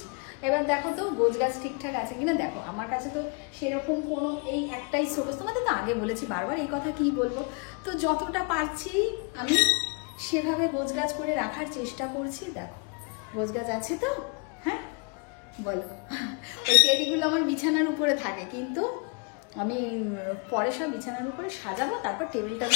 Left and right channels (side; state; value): right; quieter; 35.1 dB